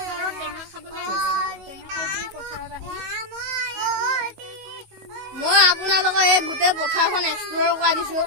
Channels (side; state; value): left; late; 19 ms